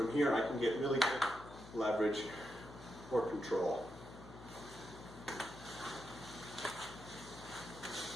here I can get really good leverage or control.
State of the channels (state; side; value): noise; left; hum, 16 dB below the sound